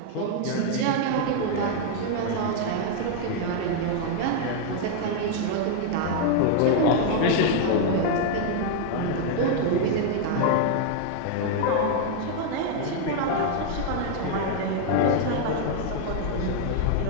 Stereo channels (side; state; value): both; different; correlation 0.00